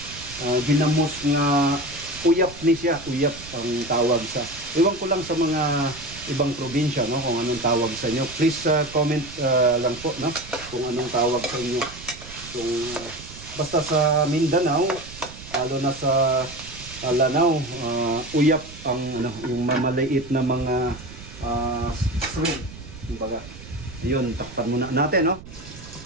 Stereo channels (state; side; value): noise; right; rumble, 16 dB below the sound